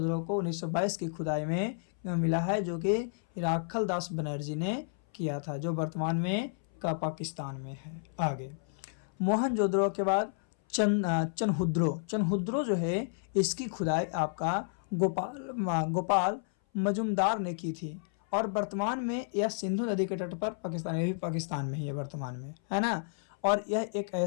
को 1922 की खुदाई में मिला है, जो कि राखल दास बनर्जी ने किया था, जो वर्तमान में का पाकिस्तान में है। आगे मोहनजोदड़ो के बाद चनहुद्रो जो है, इसकी खुदाई आपका गोपाल मजुमदार ने की थी, और वर्तमान में यह सिंधु नदी के तट पर पाकिस्तान में, भी पाकिस्तान में ही है वर्तमान में, है ना। और यह एक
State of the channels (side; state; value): right; silent; 57 dB below the other